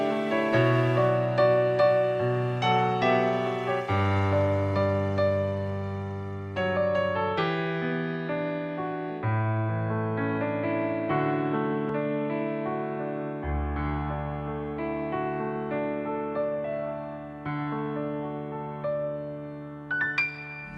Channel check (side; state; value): both; identical; correlation 1.00